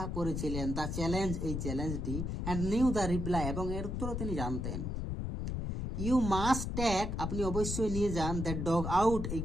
করেছিলেন, দ্য চ্যালেঞ্জ, এই চ্যালেঞ্জটি, অ্যান্ড নিউ দ্য রিপ্লাই, এবং এর উত্তরও তিনি জানতেন। ইউ মাস্ট টেক, আপনি অবশ্যই নিয়ে যান, দ্যাট ডগ আউট, এই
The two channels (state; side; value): noise; left; rumble, 3 dB below the sound